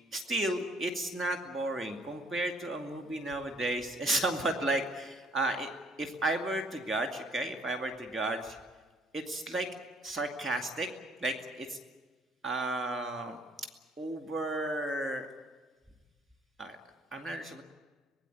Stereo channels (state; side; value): normal; both; correlation 0.62